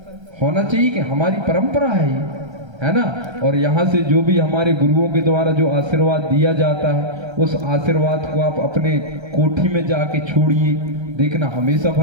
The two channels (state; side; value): late; left; 1.3 ms